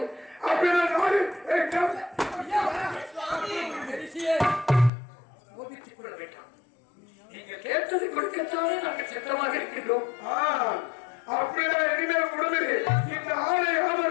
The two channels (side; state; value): right; drops out; at 4.9 s